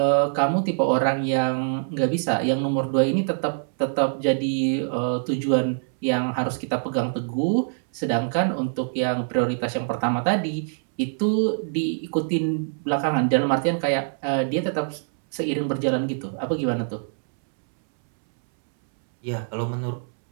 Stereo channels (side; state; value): left; silent; 63 dB below the other